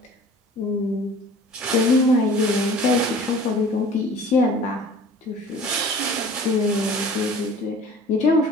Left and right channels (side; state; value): both; normal; correlation 0.46